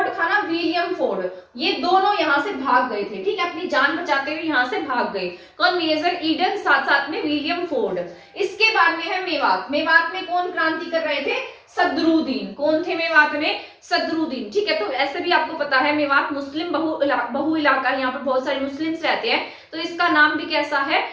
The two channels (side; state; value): both; identical; correlation 1.00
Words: था ना, विलियम फोर्ड, ये दोनों यहाँ से भाग गए थे। ठीक है, अपनी जान बचाते हुए यहाँ से भाग गए। कौन, मेजर ईडन, साथ साथ में विलियम फोर्ड। इसके बाद में है मेवात। मेवात में कौन क्रांति कर रहे थे, सदरुद्दीन। कौन थे मेवात में, सदरुद्दीन। ठीक है, तो ऐसे भी आपको पता है मेवात मुस्लिम बहु इलाका, यहाँ पर बहुत सारे मुस्लिम्स रहते हैं, तो इसका नाम भी कैसा है,